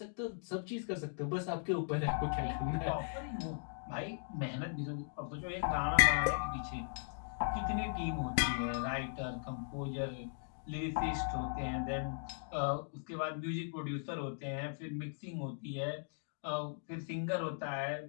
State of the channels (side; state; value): right; silent; digital silence